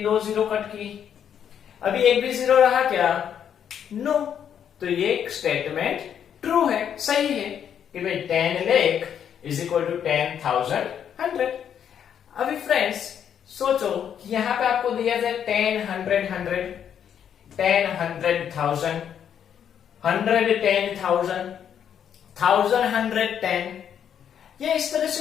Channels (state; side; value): quieter; right; 8.8 dB